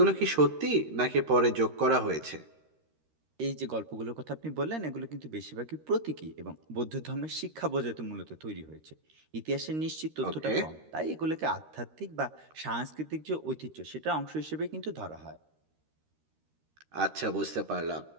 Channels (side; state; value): left; late; 13 ms